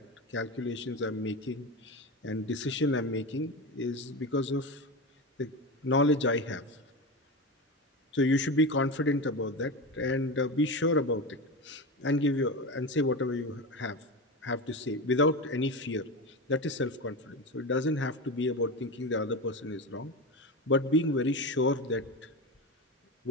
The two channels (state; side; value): normal; both; correlation 0.21